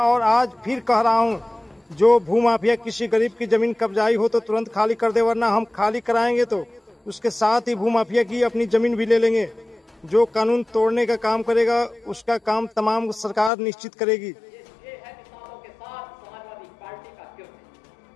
और आज फिर कह रहा हूं, जो भूमाफिया किसी गरीब की जमीन कब्जाई हो तो तुरंत खाली कर दे, वरना हम खाली कराएंगे तो उसके साथ ही भूमाफिया की अपनी जमीन भी ले लेंगे। जो कानून तोड़ने का काम करेगा उसका काम तमाम सरकार निश्चित करेगी। ये है किसानों के साथ समाजवादी पार्टी का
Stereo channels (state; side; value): drops out; right; at 13.5 s